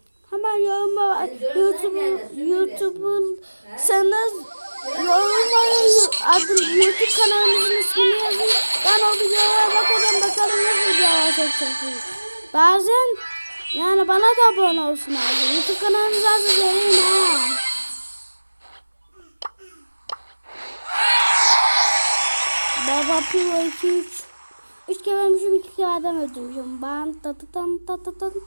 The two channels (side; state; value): both; inverted; correlation -1.00